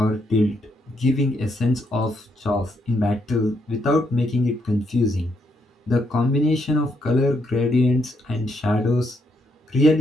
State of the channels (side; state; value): both; normal; correlation 0.76